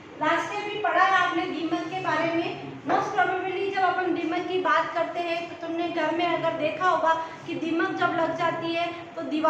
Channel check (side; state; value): both; identical; correlation 1.00